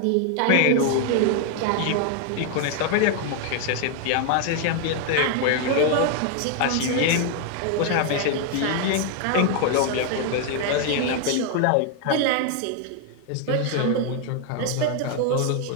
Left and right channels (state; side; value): different; both; correlation 0.00